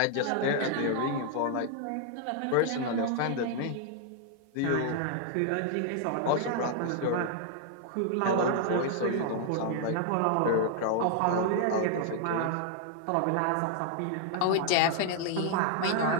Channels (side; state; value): both; different; correlation 0.00